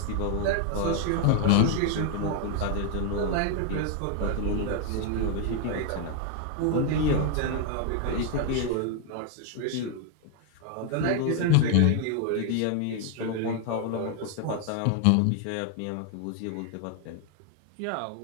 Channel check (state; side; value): different; both; correlation 0.00